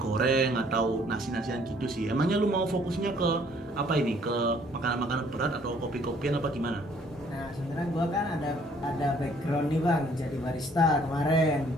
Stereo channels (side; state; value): both; normal; correlation 0.60